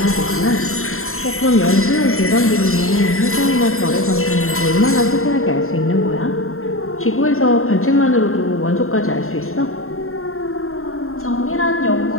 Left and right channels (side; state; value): right; late; 0.62 ms